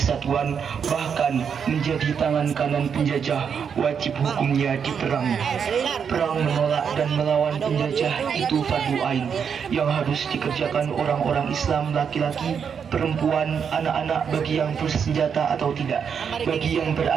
bahkan menjadi tangan kanan penjajah, wajib hukumnya diperangi. Perang menolak dan melawan penjajah itu fardu ain yang harus dikerjakan orang-orang Islam, laki-laki, perempuan, anak-anak, bagi yang bersenjata atau tidak, bagi yang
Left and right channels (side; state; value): left; quieter; 7.0 dB